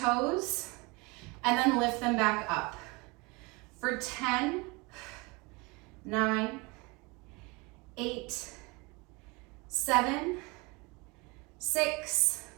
and then lift them back up. For 10, 9, 8, 7, 6,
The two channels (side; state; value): left; quieter; 26.6 dB